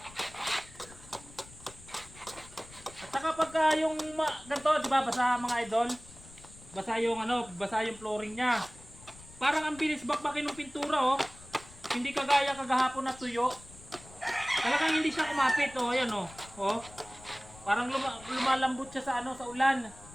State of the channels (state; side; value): noise; left; rumble, 20 dB below the sound